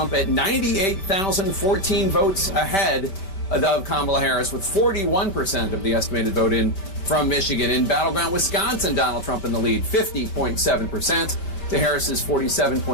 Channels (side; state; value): right; late; 5.2 ms